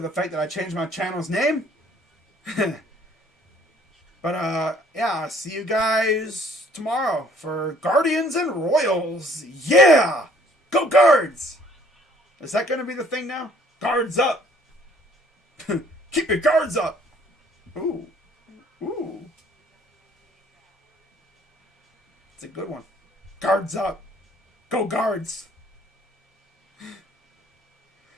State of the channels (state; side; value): normal; both; correlation 0.59